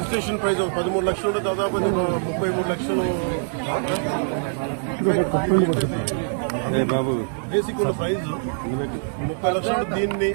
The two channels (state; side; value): silent; left; digital silence